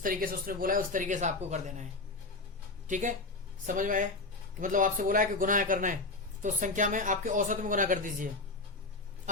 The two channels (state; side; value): quieter; right; 3.3 dB